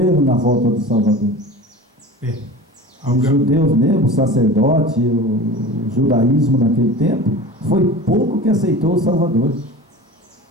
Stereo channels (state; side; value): normal; both; correlation 0.35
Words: na volta do Salvador. Os judeus mesmo, o sacerdote, o judaísmo naquele tempo, foi pouco que aceitou o Salvador.